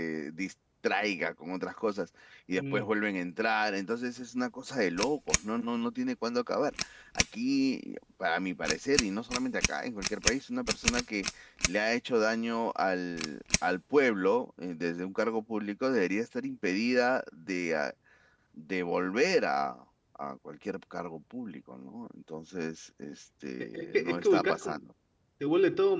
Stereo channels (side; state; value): both; identical; correlation 1.00